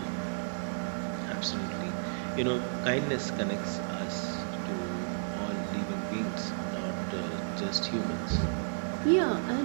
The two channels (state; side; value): silent; left; digital silence